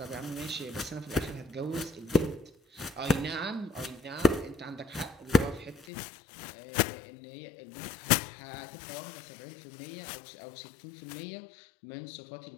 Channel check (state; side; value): drops out; right; at 5.9 s